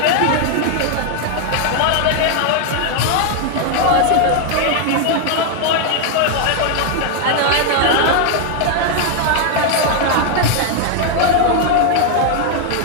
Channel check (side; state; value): both; different; correlation 0.00